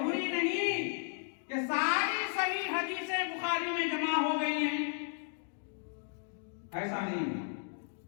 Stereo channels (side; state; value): right; silent; 55 dB below the other